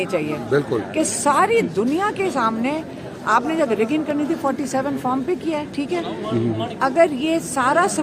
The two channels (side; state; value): both; identical; correlation 1.00